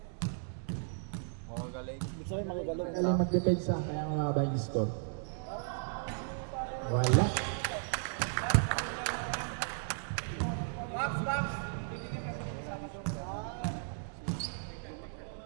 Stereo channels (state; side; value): silent; left; digital silence